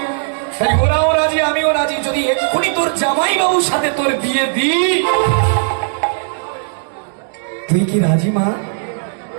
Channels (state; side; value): silent; left; digital silence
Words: তাই ওরাও রাজি, আমিও রাজি। যদি এক্ষুনি তোর জামাই বাবুর সাথে তোর বিয়ে দিই, তুই কি রাজি মা?